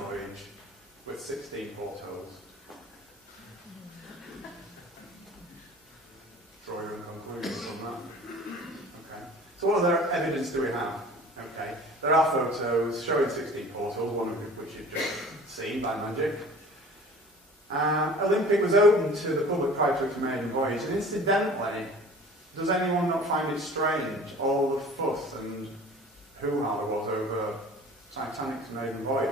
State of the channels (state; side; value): normal; both; correlation 0.44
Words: with 16 portholes. Draw your own conclusions from that. Okay. So what other evidence do we have? Okay. There are photos showing 16 portholes, one of which you've just seen by magic. Olympic was open to the public prior to its maiden voyage, and incidentally, does anyone not find it strange, all the fuss and hoo-ha there was over Titanic's maiden